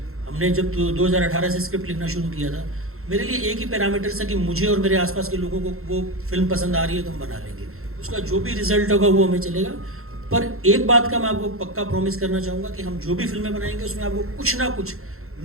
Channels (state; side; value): late; left; 0.62 ms